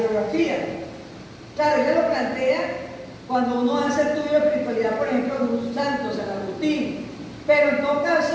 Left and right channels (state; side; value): identical; both; correlation 1.00